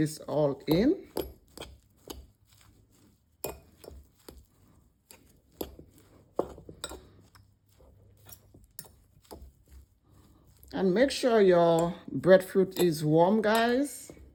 all in. And make sure your breadfruit is warm, guys,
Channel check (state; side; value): identical; both; correlation 1.00